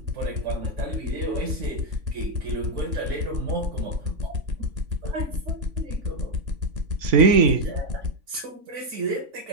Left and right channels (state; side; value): late; left; 3.5 ms